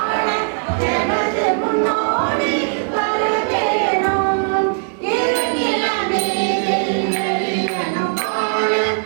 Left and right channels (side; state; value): left; silent; digital silence